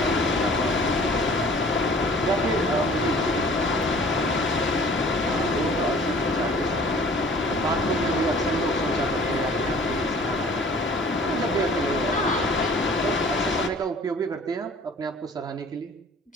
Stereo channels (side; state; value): both; normal; correlation 0.50